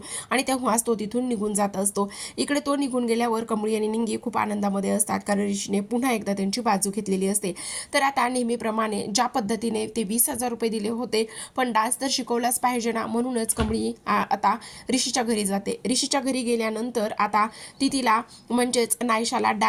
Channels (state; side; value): identical; both; correlation 1.00